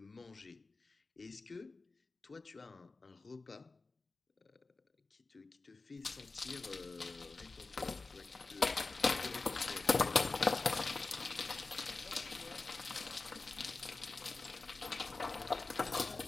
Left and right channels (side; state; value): right; quieter; 3.7 dB